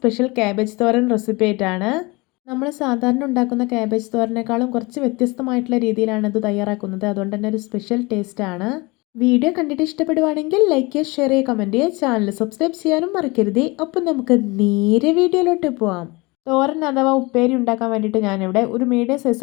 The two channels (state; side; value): quieter; right; 25.0 dB